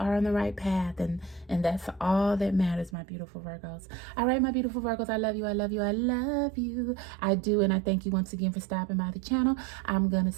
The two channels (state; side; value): drops out; left; at 3.0 s